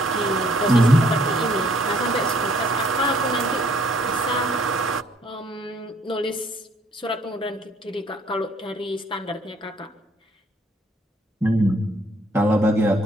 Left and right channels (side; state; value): both; normal; correlation 0.63